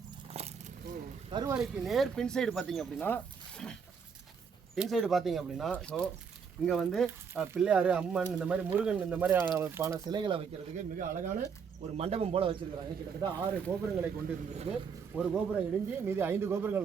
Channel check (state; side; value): quieter; left; 6.3 dB